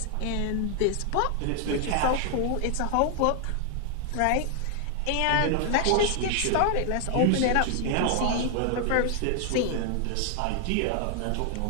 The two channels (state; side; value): different; both; correlation 0.00